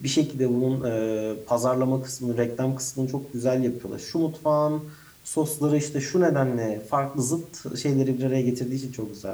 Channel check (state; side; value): identical; both; correlation 1.00